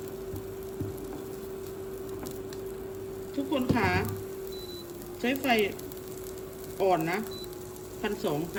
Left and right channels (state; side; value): identical; both; correlation 1.00